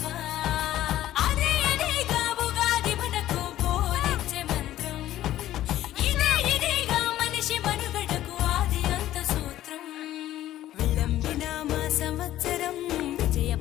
అదే అదేగా ఉగాది మనకు బోధించే మంత్రం ఇదేగా మనిషి మనుగడకు ఆది అంత సూత్రం విళంబిన మా సంవత్సరం విజయ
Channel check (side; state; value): right; quieter; 13.6 dB